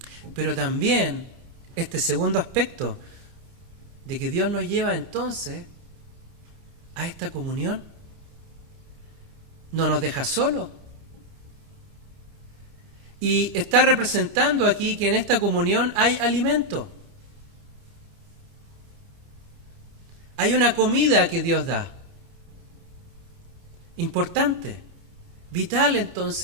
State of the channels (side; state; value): left; late; 29 ms